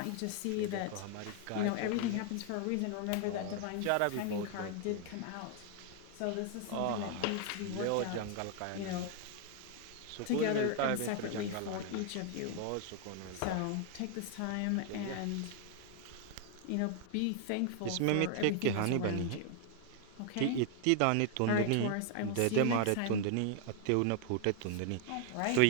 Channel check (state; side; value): different; both; correlation 0.00